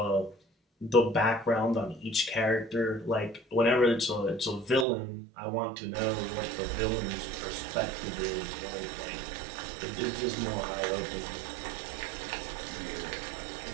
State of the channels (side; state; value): left; drops out; at 4.9 s